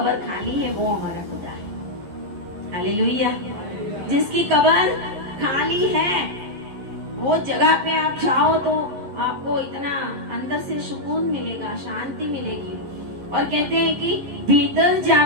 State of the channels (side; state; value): left; late; 11 ms